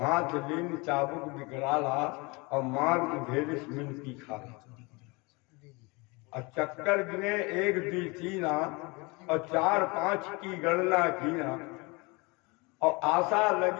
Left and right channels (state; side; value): quieter; right; 27.0 dB